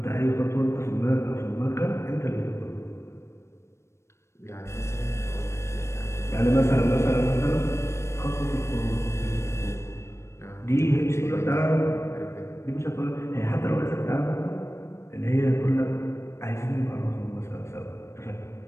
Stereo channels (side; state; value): right; late; 0.13 ms